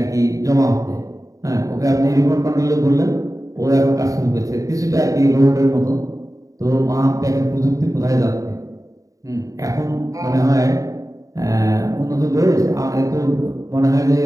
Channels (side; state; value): left; late; 0.16 ms